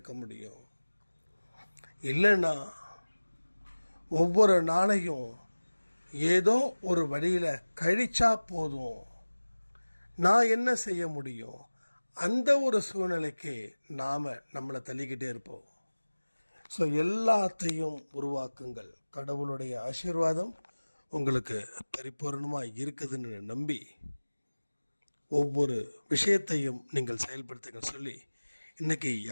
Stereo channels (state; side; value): inverted; both; correlation -1.00